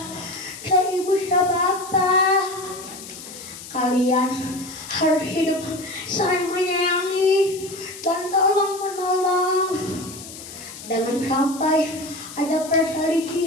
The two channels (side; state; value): left; noise; hiss, 14 dB below the sound